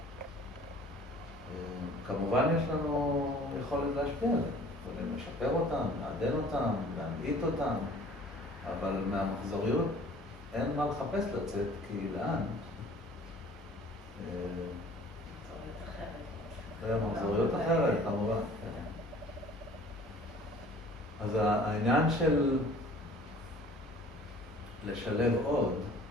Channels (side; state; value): both; normal; correlation 0.50